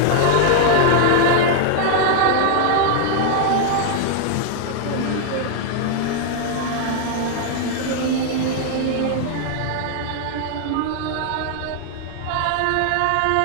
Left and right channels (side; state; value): both; different; correlation 0.00